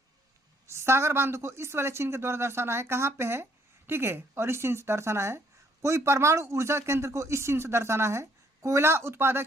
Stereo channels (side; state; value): both; normal; correlation 0.66